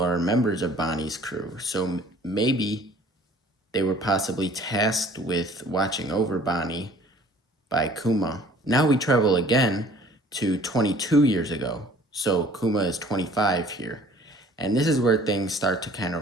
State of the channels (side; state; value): both; normal; correlation 0.53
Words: members of Bonnie's crew. So maybe they were possibly tasked with watching over Bonnie by Kuma. Now we travel again to 22 years ago. So Kuma is 25 here. And this is where things start to kind